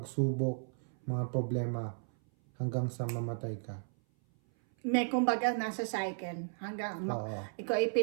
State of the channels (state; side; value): silent; left; 55 dB below the other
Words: mga problema hanggang sa mamatay ka. May kumbaga nasa cycle. Hanggang Oo. ikaw ay